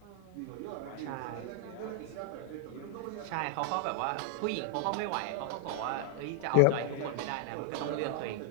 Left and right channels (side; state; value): both; different; correlation 0.00